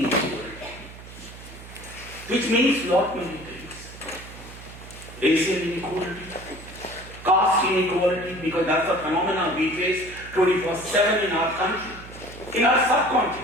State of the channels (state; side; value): noise; right; hum, 16 dB below the sound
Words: which means lot many things. Racial inequality, caste inequality, because that's a phenomenon we face 24/7 in our country, in our